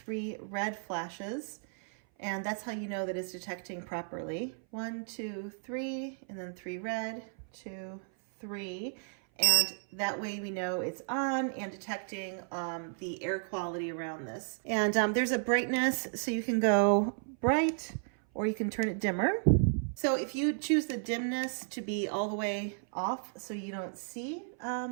red flashes, and that's how you know that it's detecting properly. 1, 2, 3, and then 3 red, 2, 3, and that way we know it's on and detecting the air quality around this. And there's a brightness, so you can go bright or you can turn it dimmer. So if you choose the dimness to be all the way off so you don't see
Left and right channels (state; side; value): silent; left; 55 dB below the other